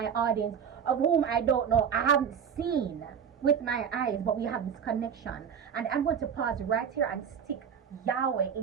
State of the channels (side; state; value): left; quieter; 7.6 dB